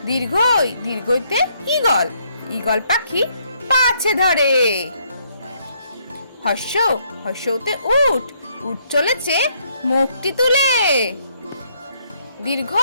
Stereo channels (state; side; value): inverted; both; correlation -0.71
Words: দীর্ঘই দীর্ঘইতে ঈগল, ঈগল পাখি পাছে ধরে। হর্ষ হর্ষতে উট, উট চলেছে মুখটি তুলে। দীর্ঘ